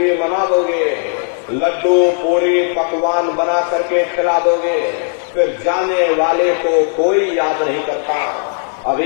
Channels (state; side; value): silent; right; 56 dB below the other